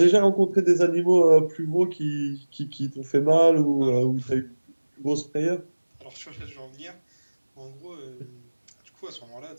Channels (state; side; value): inverted; both; correlation -1.00